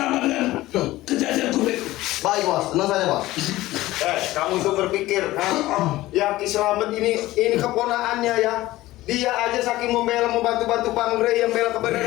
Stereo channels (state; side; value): quieter; right; 17.1 dB